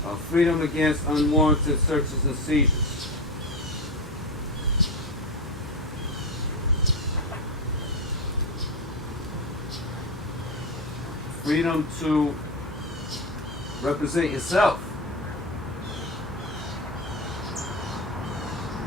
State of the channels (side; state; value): both; normal; correlation 0.18